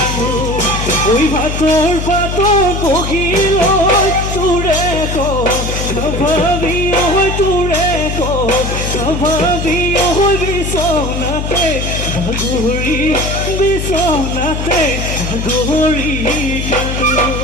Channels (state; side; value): noise; left; hum, 3 dB below the sound